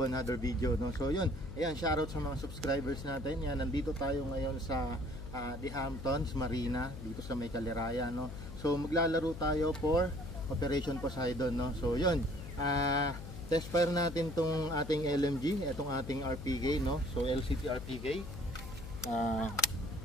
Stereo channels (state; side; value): noise; left; hum, 10 dB below the sound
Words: another video, no? So yun, ayan, shoutout sa mga subscribers natin. Yan, nandito tayo ngayon sa The Hamptons Marina, dito sa may Caliraya, no? So maglalaro tayo for Operation Poseidon, no? So yun, test fire natin tong ating LMG, itong ating RPK, no? So LCT RPK.